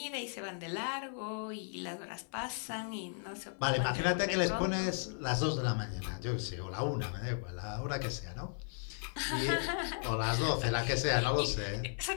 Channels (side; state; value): right; silent; 54 dB below the other